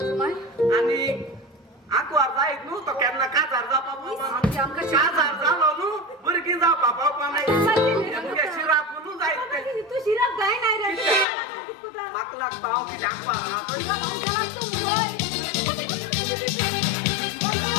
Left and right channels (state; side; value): drops out; right; at 11.2 s